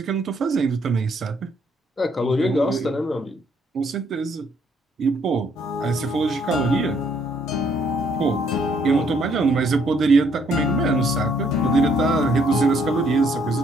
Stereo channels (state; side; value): normal; both; correlation 0.68